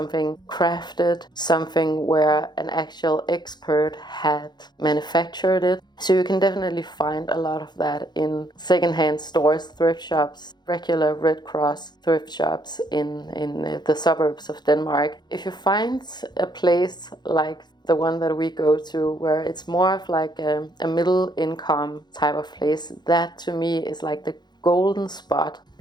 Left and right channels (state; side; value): late; right; 0.21 ms